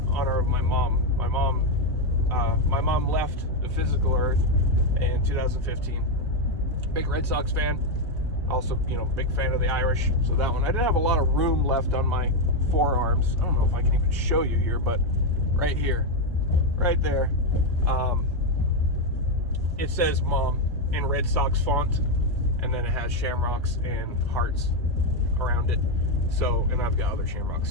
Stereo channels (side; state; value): both; normal; correlation 0.05